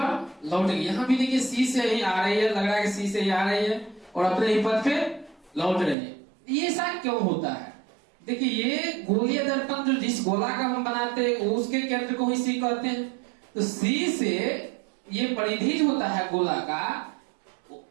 लौट गई। यहां भी देखिए C से ही आ रही है, लग रहा है कि C से ही आ रही है और अपने ही पथ पे लौट रही है। ये ऐसा क्यों होता है? देखिए ये गोलीय दर्पण जो जिस गोला का हम बनाते हैं उसके केंद्र को ही C कहते हैं। तो C से ये परिधि जो होता है गोला का,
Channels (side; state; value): left; drops out; at 6.0 s